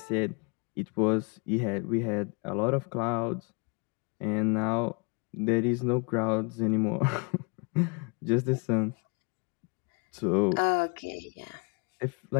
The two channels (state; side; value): quieter; right; 32.9 dB